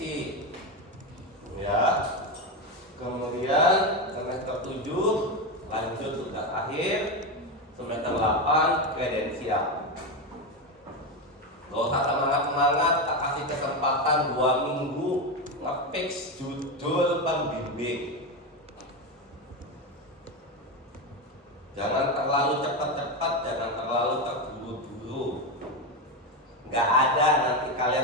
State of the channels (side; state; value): both; normal; correlation 0.13